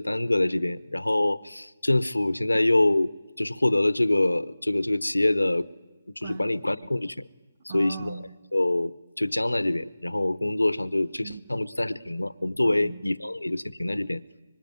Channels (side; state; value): both; inverted; correlation -0.99